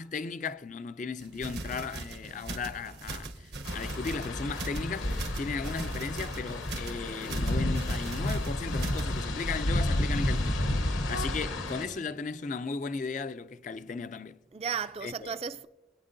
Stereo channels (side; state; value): both; normal; correlation 0.69